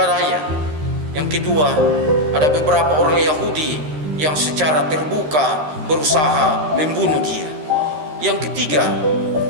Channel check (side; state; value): left; late; 13 ms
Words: Yang kedua, ada beberapa orang Yahudi yang secara terbuka berusaha membunuh dia. Yang ketiga,